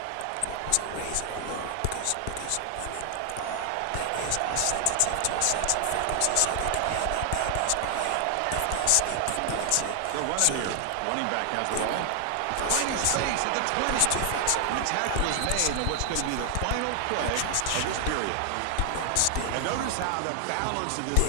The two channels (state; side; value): different; both; correlation 0.00